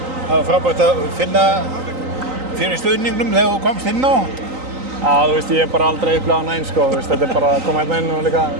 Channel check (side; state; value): left; late; 3.9 ms